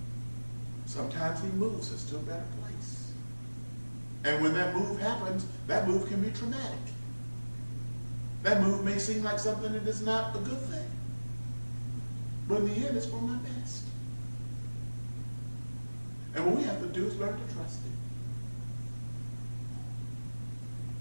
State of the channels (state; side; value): inverted; both; correlation -1.00